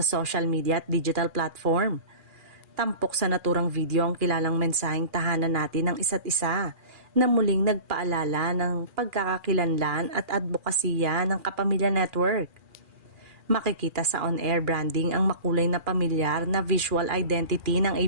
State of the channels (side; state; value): left; late; 2.4 ms